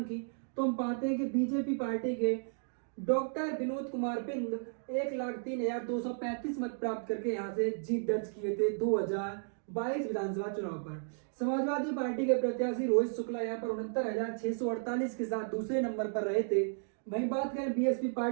की, तो हम पाते हैं कि बीजेपी पार्टी के डॉक्टर विनोद कुमार बिंद 1,03,235 मत प्राप्त करके यहां से जीत दर्ज किए थे 2022 विधानसभा चुनाव पर। समाजवादी पार्टी के प्रत्याशी रोहित शुक्ला यहां पर 69,648 के साथ दूसरे नंबर पर रहे थे। वहीं बात करें बीएसपी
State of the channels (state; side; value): silent; left; digital silence